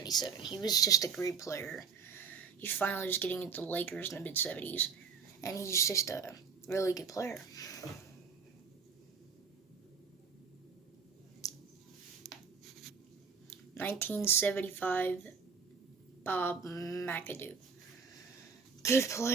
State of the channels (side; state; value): left; quieter; 5.8 dB